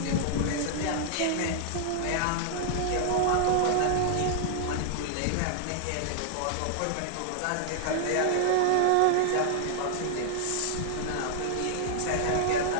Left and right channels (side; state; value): both; different; correlation -0.01